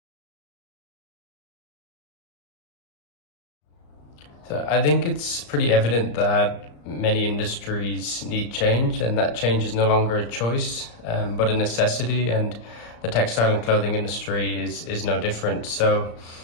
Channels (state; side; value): late; right; 34 ms